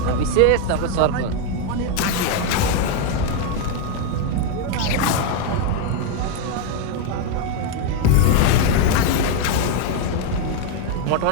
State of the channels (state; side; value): different; both; correlation 0.01